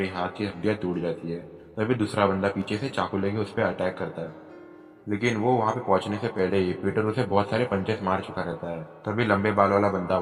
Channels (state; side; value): identical; both; correlation 1.00